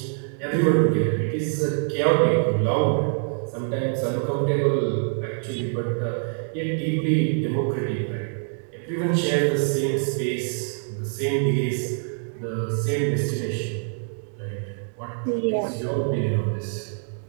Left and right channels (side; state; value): left; silent; digital silence